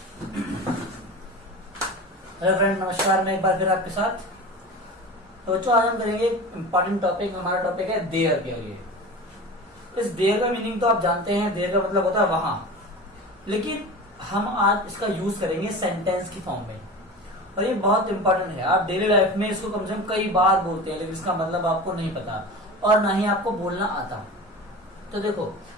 Hello friend, नमस्कार। मैं एक बार फिर आपके साथ। तो बच्चों, आज हम करेंगे इंपॉर्टेंट टॉपिक। हमारा टॉपिक है देयर के लिए। इस देयर का मीनिंग तो आप जानते हैं, देयर का मतलब होता है वहां, लेकिन हम आज इसका यूज करेंगे सेंटेंस की फॉर्म में। और ये बहुत इंपॉर्टेंट है। आप डेली लाइफ में इसको कम से कम कई बार बोलते हैं, लेकिन इसका मतलब आपको नहीं पता और ना ही आपको बोलना आता। तो देखो,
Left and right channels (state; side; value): normal; both; correlation 0.32